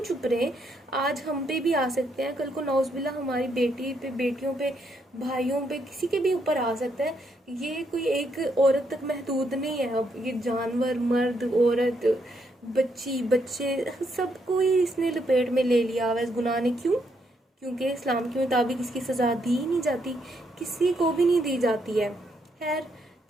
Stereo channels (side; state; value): both; normal; correlation 0.76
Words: चुप रहे? आज हम पे भी आ सकते हैं, कल को नौज़बिल्ला हमारी बेटी पे, बेटियों पे, भाइयों पे, किसी के भी ऊपर आ सकता है। ये कोई एक औरत तक महदूद नहीं है। अब ये जानवर, मर्द, औरत, बच्ची, बच्चे, सबको ही इसने लपेट में ले लिया हुआ इस गुनाह ने। क्यों? क्योंकि इस्लाम के मुताबिक इसकी सज़ा दी ही नहीं जाती, किसी को भी नहीं दी जाती है। खैर,